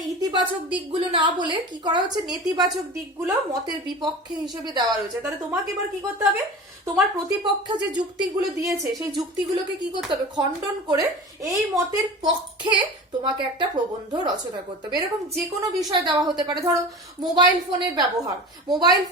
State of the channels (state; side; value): normal; both; correlation 0.34